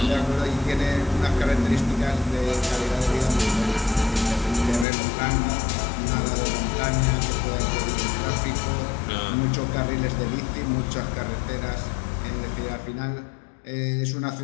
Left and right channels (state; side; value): drops out; right; at 4.9 s